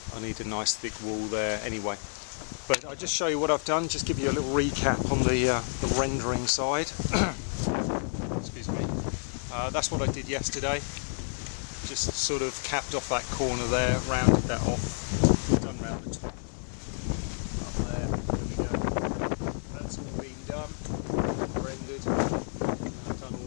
I need a nice thick wall there anyway. But I'll just show you what I've done, just give you a little recap on the rendering side. Excuse me. That's what I did yesterday. Just sort of capped off that corner there, rounded that off, come round the top. That's all been done, rendered, done all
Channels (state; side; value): silent; right; 56 dB below the other